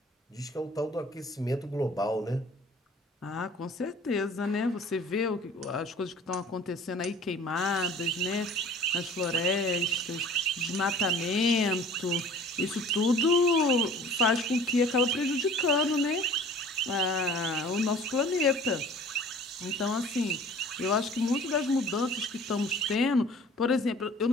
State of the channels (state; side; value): normal; both; correlation 0.48